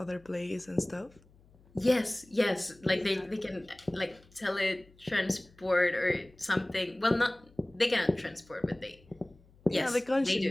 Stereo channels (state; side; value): noise; left; hum, 28 dB below the sound